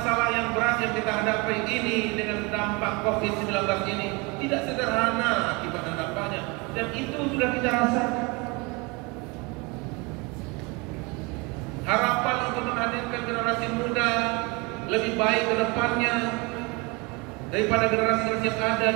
yang berat yang kita hadapi ini dengan dampak COVID-19 ini tidak sederhana akibat dan dampaknya, dan itu sudah kita rasakan. Harapan untuk menghadirkan generasi muda lebih baik ke depannya daripada generasi yang ada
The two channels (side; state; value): left; quieter; 27.1 dB